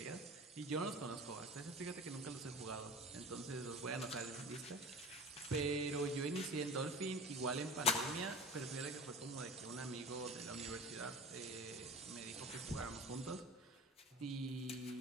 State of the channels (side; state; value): both; normal; correlation 0.35